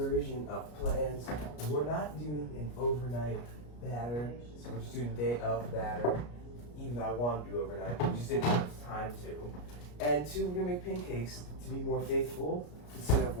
of plans. We're not doing an overnight batter, so we're just doing a day of batter. Even though I want to do overnight, we just didn't have time to. And 2, we're gonna make pancakes to be more faithful instead of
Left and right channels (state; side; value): late; right; 33 ms